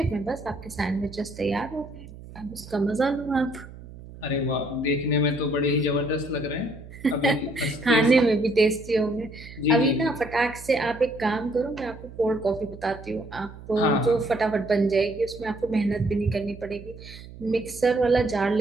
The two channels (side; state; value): right; noise; hum, 16 dB below the sound